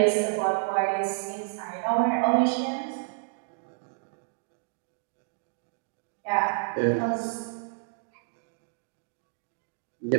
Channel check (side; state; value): left; silent; digital silence